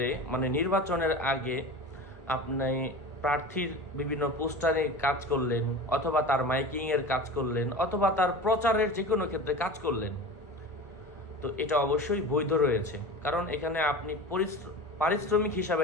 মানে নির্বাচনের আগে আপনি প্রার্থীর বিভিন্ন পোস্টারে কাজ করলেন, অথবা তার মাইকিংয়ের কাজ করলেন, অথবা তার প্রচারের যে কোনো ক্ষেত্রে কাজ করলেন, তো এটা অবশ্যই বৈধ রয়েছে। কারণ এখানে আপনি পারিশ্রমিক হিসাবে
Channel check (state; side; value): normal; both; correlation 0.33